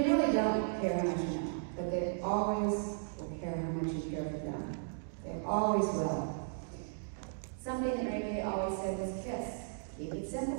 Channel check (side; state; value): left; silent; digital silence